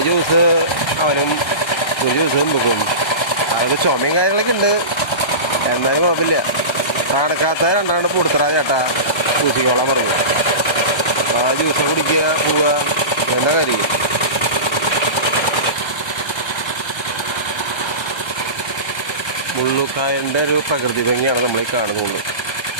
ജ്യൂസ് അവനും ഒരു ജ്യൂസും വെക്കും. അവർക്ക് ചുമയും കാര്യങ്ങളൊക്കെ ഉണ്ട്, എന്നാലും കുഴപ്പമില്ല. നടക്കാത്ത രണ്ടാണ്ട് കൊടുത്തറാ ചേട്ടാ പൂശിക്കോളാൻ പറഞ്ഞു. അപ്പോൾ ആ ജ്യൂസ് കുടിക്കുക, പോവുക, എന്താ കാര്യം. മുള്ളുക്കായൻ്റെ ഒരു പ്രകൃതി ഭംഗിയാണ് നമ്മൾ ഈ കാണുന്നത്.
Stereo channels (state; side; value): late; right; 1.3 ms